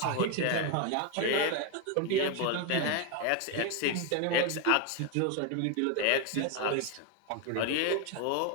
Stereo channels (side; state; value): both; different; correlation 0.01